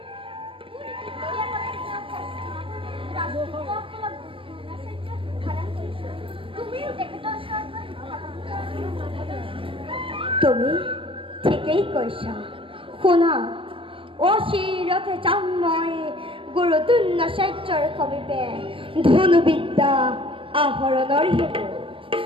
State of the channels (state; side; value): late; left; 0.25 ms